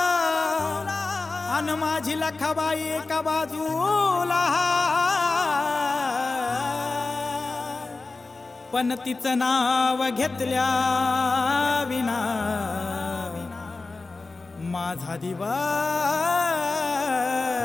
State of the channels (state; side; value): quieter; right; 3.6 dB